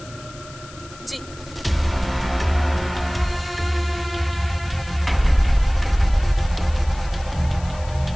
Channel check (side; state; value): left; noise; hiss, 19 dB below the sound